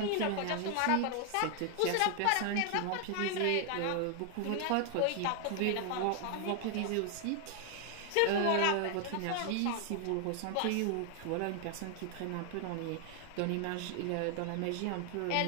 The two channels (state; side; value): different; both; correlation 0.00